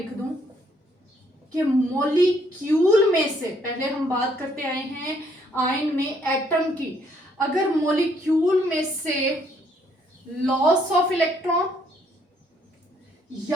दूं कि मॉलिक्यूल में से, पहले हम बात करते आए हैं आयन में एटम की। अगर मॉलिक्यूल में से लॉस ऑफ इलेक्ट्रॉन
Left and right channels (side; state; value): both; normal; correlation 0.68